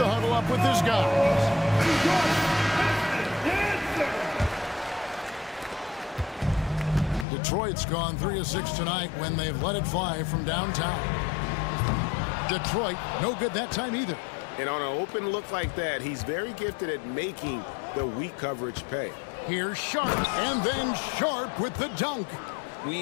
huddle up with his guys. Detroit's gone 3 of 6 tonight when they've let it fly from downtown. Detroit, no good that time either. And on an open look like that, he's very gifted at making the weak coverage pay. Here's Sharp, and then Sharp with the dunk.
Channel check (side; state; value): right; drops out; at 7.2 s